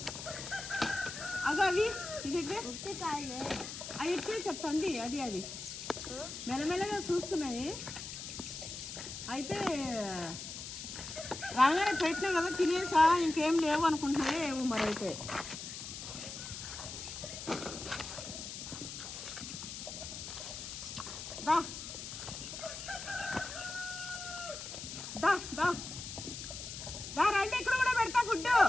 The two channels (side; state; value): left; noise; hiss, 8 dB below the sound